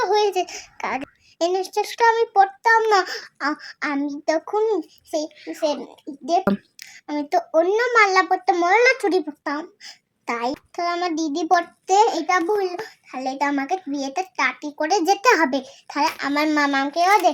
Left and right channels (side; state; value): both; identical; correlation 1.00